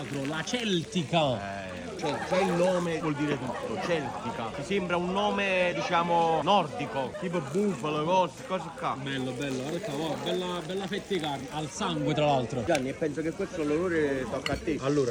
la celtica. Cioè, già il nome vuol dire tutto, celtica. Ti sembra un nome, diciamo, nordico, tipo bufalo, cose qua. Bello, bello, guarda qua, bella fetta di carne, al sangue tra l'altro. Gianni, e penso che questo l'onore tocca a te.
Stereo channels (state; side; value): identical; both; correlation 1.00